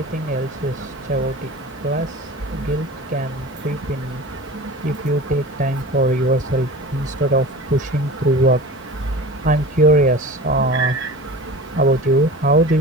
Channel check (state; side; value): normal; both; correlation 0.36